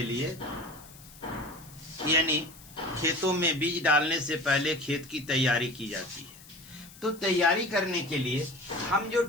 लिए, यानी खेतों में बीज डालने से पहले खेत की तैयारी की जाती है। तो तैयारी करने के लिए हम जो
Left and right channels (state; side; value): noise; left; hiss, 20 dB below the sound